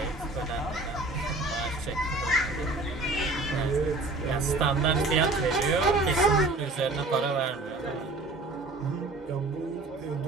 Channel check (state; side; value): quieter; left; 3.1 dB